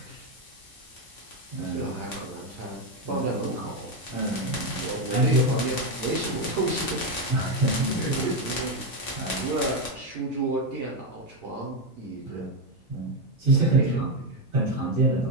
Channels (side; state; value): both; normal; correlation 0.07